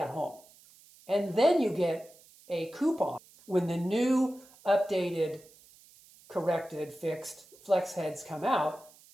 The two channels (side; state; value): right; noise; hiss, 25 dB below the sound